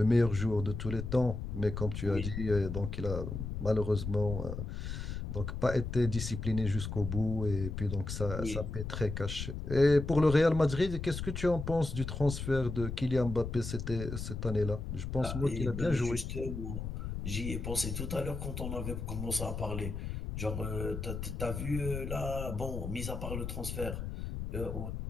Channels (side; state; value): left; noise; rumble, 5 dB below the sound